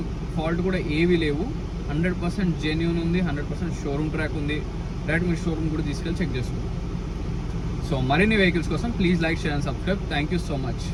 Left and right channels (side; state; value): both; identical; correlation 1.00